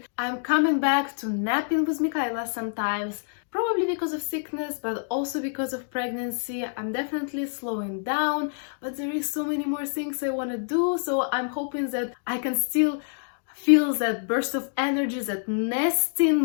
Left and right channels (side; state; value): right; silent; digital silence